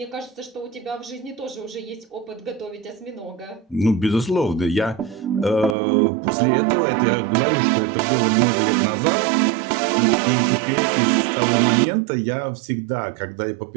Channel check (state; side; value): drops out; left; at 5.8 s